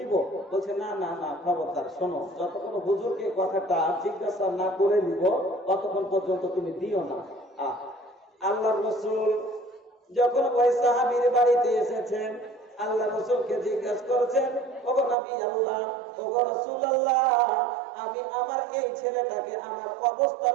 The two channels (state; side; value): drops out; left; at 15.2 s